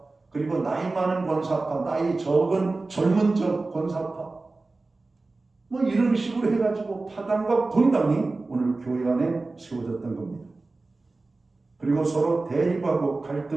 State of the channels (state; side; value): quieter; left; 3.4 dB